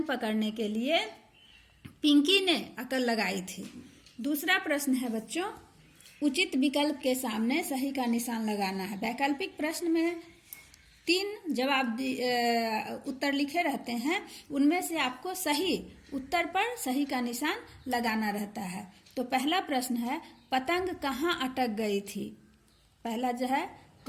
पकड़ने के लिए पिंकी ने अकल लगाई थी। दूसरा प्रश्न है बच्चों, उचित विकल्प के सामने सही का निशान लगाना है। वैकल्पिक प्रश्न में 3 जवाब उत्तर लिखे रहते हैं, उनमें से आपको सही उत्तर पर सही का निशान लगाना रहता है। तो पहला प्रश्न है, पतंग कहाँ अटक गई थी? पहला जो है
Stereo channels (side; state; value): both; identical; correlation 1.00